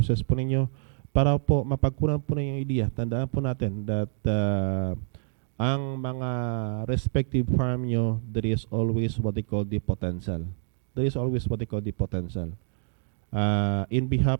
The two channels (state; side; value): silent; left; digital silence